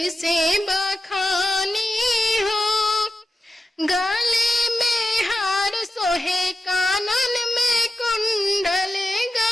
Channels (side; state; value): both; normal; correlation 0.92